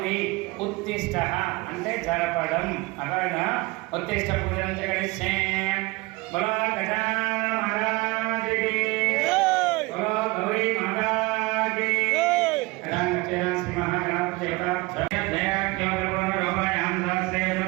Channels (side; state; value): left; quieter; 23.6 dB